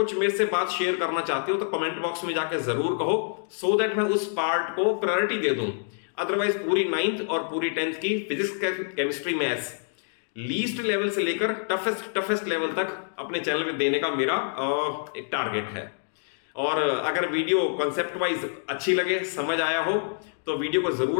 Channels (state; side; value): silent; right; digital silence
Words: मेरे से बात शेयर करना चाहते हो तो कमेंट बॉक्स में जाके जरूर कहो, सो दैट मैं उस पार्ट को प्रायोरिटी दे दूं। अदरवाइज पूरी 9th और पूरी 10th की physics, chemistry, maths least level से लेकर टफेस्ट लेवल तक अपने चैनल पे देने का मेरा एक टारगेट है। और अगर वीडियो कॉन्सेप्ट वाइज अच्छी लगे, समझ आया हो, तो वीडियो को